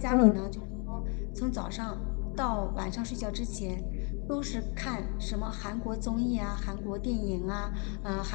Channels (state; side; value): quieter; right; 36.1 dB